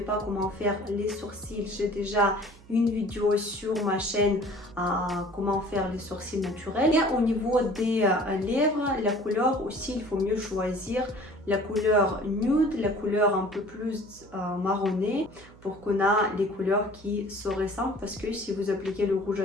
comment faire les sourcils, j'ai déjà une vidéo sur ma chaîne comment faire les sourcils naturels. Et au niveau des lèvres, la couleur aussi, il faut mieux choisir la couleur nude, la couleur un peu plus marronnée pour qu'on a les couleurs qui se ressemblent, parce que si vous appliquez le rouge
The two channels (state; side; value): noise; right; hum, 23 dB below the sound